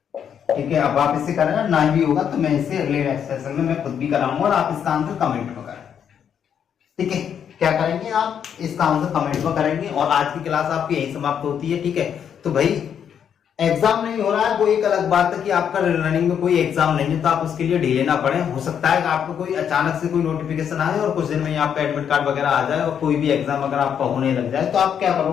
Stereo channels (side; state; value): right; quieter; 8.3 dB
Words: ठीक है, अब आप इसे करें ना भी होगा तो मैं इसे अगले सेशन में मैं खुद भी कराऊंगा और आप इसका आंसर कमेंट में करें। ठीक है, क्या करेंगे आप इसका आंसर कमेंट में करेंगे। और आज की क्लास आपकी यही समाप्त होती है, ठीक है। तो भाई एग्जाम नहीं हो रहा है वो एक अलग बात है कि आपका रनिंग में कोई एग्जाम नहीं है तो आप उसके लिए ढीले ना पड़े। हो सकता है कि आपको कोई अचानक से कोई नोटिफिकेशन आए और कुछ दिन में आपका एडमिट कार्ड वगैरह आ जाए और कोई भी एग्जाम अगर आपका होने लग जाए तो आप क्या